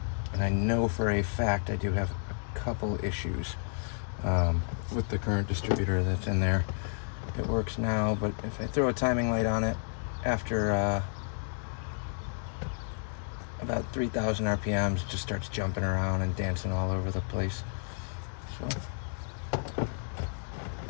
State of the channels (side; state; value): right; silent; 57 dB below the other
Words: I know for a fact I do have a couple issues with the current distributor that's in there. It works now, but if I throw a timing light on it after about 3,000 RPMs, it just starts jumping around and dancing all over the place. So